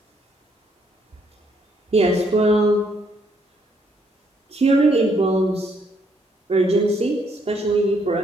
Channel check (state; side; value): normal; both; correlation 0.71